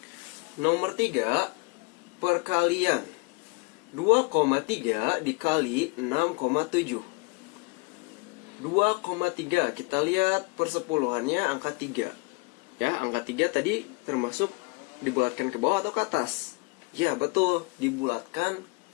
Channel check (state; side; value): quieter; right; 27.8 dB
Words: Nomor 3, perkalian. 2,3 dikali 6,7. 2,3, kita lihat persepuluhannya angka 3. Ya, angka 3 tadi termasuk dibulatkan ke bawah atau ke atas? Ya, betul, dibulatkan